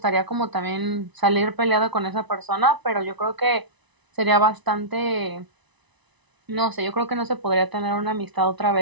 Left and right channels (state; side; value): late; left; 1.0 ms